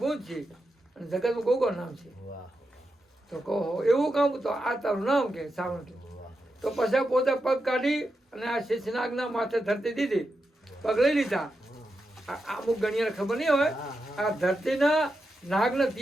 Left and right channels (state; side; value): normal; both; correlation 0.87